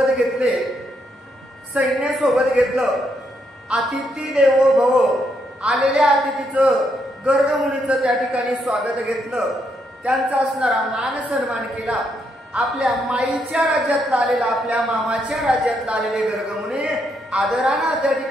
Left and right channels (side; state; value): both; normal; correlation 0.77